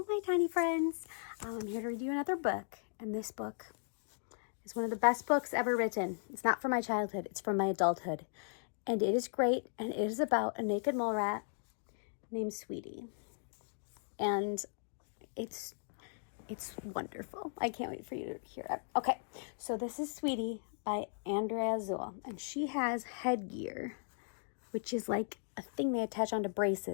my tiny friends. I'm here to read you another book, and this book is one of the best books ever written. It's not from my childhood, it's from my adulthood. And it is great, and it is about a naked mole rat named Sweety. And it's wonderful. I can't wait for you to hear it. Okay, so this is Sweety by Andrea Zoll, and she has headgear, which is like a thing they attach onto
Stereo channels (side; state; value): right; silent; digital silence